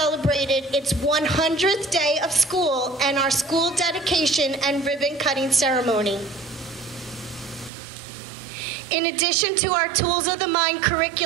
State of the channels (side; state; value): left; drops out; at 7.7 s